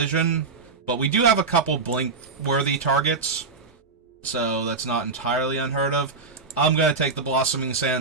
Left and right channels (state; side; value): quieter; left; 4.3 dB